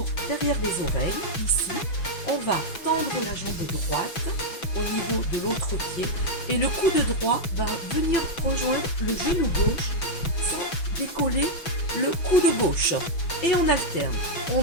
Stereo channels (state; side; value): late; right; 6.1 ms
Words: derrière les oreilles, ici, on va tendre la jambe droite au niveau de l'autre pied et le coude droit va venir rejoindre le genou gauche sans décoller le coude gauche. Et on alterne,